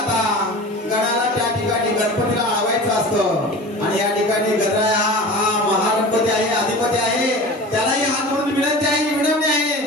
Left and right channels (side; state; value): both; normal; correlation 0.35